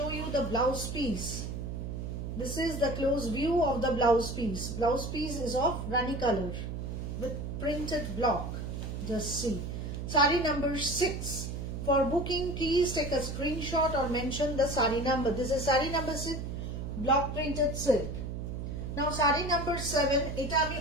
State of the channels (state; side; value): noise; right; hum, 5 dB below the sound